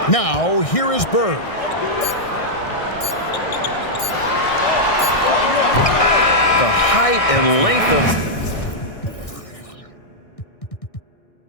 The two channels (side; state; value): right; late; 1.6 ms